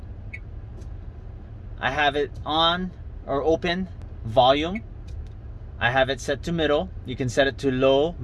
I have it on or open. Volume, I have it set to middle. You can set it to low,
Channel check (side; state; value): both; identical; correlation 1.00